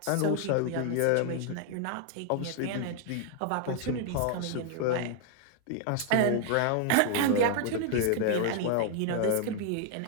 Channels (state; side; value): different; both; correlation 0.00